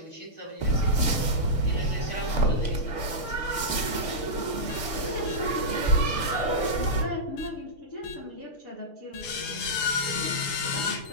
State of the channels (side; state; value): right; late; 6.6 ms